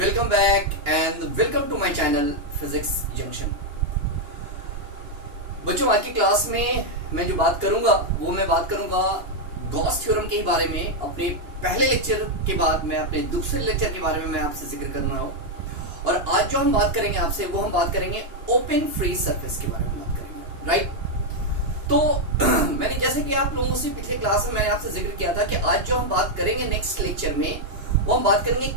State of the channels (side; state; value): left; late; 2.9 ms